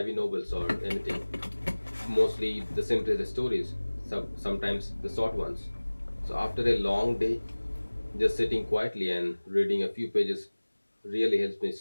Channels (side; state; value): both; inverted; correlation -1.00